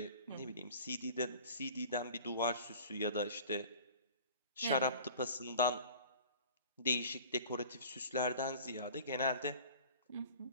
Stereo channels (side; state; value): both; inverted; correlation -0.44